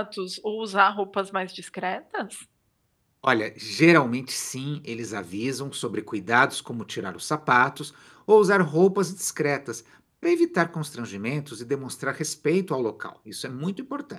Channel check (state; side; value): identical; both; correlation 1.00